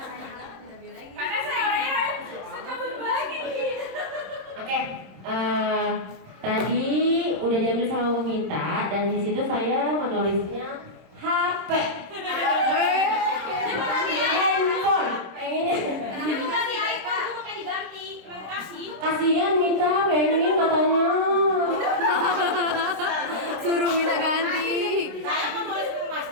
Karena saya orangnya suka berbagi. Oke, tadi udah diambil sama Bu Mita dan di situ saya menulisnya HP, handphone. Pengennya kasihan Mita pengen katanya. Suruh minta ganti. Saya mau tulis ke Mas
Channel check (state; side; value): late; left; 26 ms